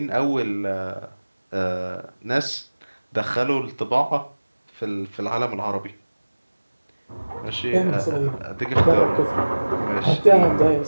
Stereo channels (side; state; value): both; inverted; correlation -1.00